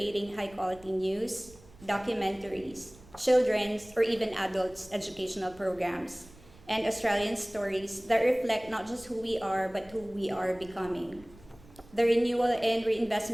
high-quality news, documentaries, children's or even adults' educational programs, and Australian stories that reflect not just who we are, but who we are becoming. The renewal and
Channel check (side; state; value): right; noise; rumble, 23 dB below the sound